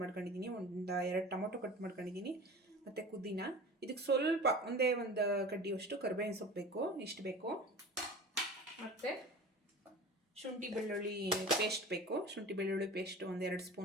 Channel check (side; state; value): both; normal; correlation 0.37